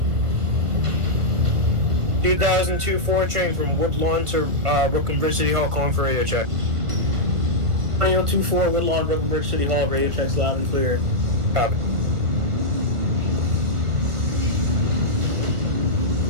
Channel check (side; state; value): left; late; 1.4 ms